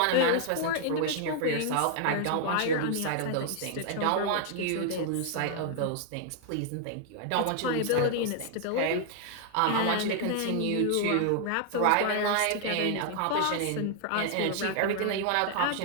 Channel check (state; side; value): different; both; correlation 0.00